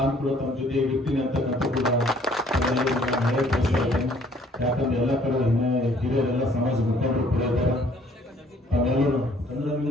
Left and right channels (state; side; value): normal; both; correlation 0.60